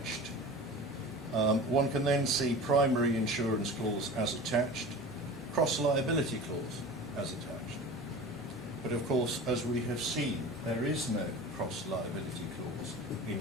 One can then see primary insurance clause as attached, cross liability clause as attached. But of course, as we have seen, there is no cross liability clause in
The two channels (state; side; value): normal; both; correlation 0.35